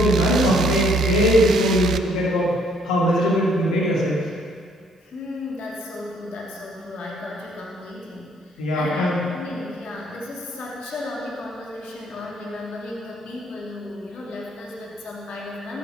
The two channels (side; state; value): both; normal; correlation 0.64